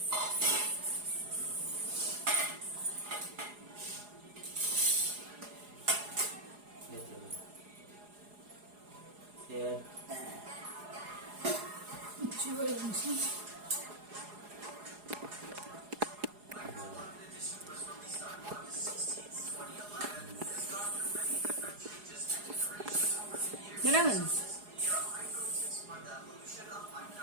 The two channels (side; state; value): left; late; 4.8 ms